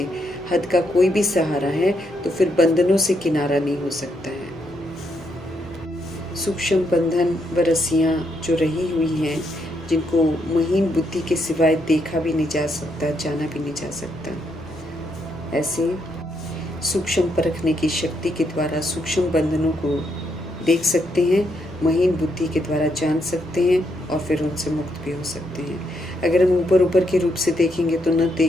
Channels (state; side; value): noise; right; hum, 24 dB below the sound